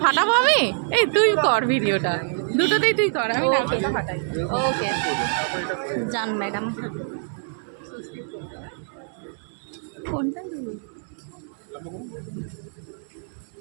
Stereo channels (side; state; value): left; silent; digital silence